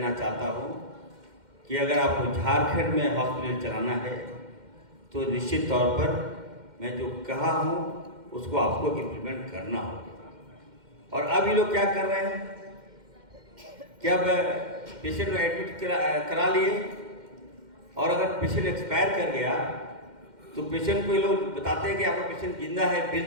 चाहता हूँ कि अगर आपको झारखंड में हॉस्पिटल चलाना है तो निश्चित तौर पर मैं जो कहा हूँ उसको आपको इम्प्लीमेंट करना होगा। और अब ये लोग क्या कर रहे हैं कि अब पेशेंट को एडमिट करा लिए, और अगर पेशेंट एक्सपायर कर गया तो पेशेंट को ये लोग बताते हैं कि आपका पेशेंट जिंदा है, बिल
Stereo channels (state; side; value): late; left; 2.1 ms